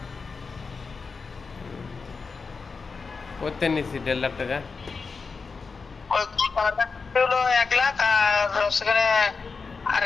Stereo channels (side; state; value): right; quieter; 4.7 dB